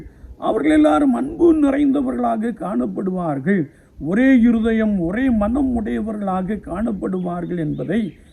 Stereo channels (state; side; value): identical; both; correlation 1.00